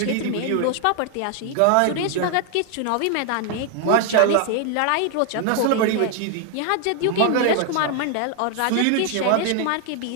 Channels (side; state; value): both; different; correlation 0.00